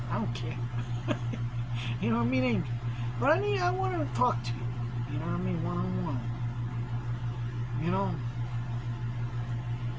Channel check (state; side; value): identical; both; correlation 1.00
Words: I don't care. You know what I mean, Angel? But I want to talk to you. You know what I mean, one-on-one. You know.